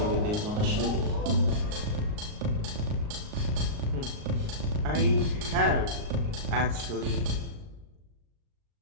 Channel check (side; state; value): left; late; 38 ms